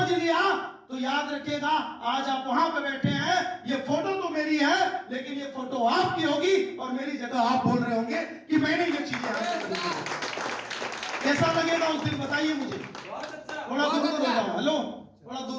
लिया तो याद रखिएगा, आज आप वहां पे बैठे हैं, ये फोटो तो मेरी है, लेकिन ये फोटो आपकी होगी और मेरी जगह आप बोल रहे होंगे कि मैंने ये चीजें हासिल की। कैसा लगेगा उस दिन बताइए मुझे। बहुत अच्छा। थोड़ा दूर हो जाओ, हेलो, थोड़ा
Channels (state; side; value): identical; both; correlation 1.00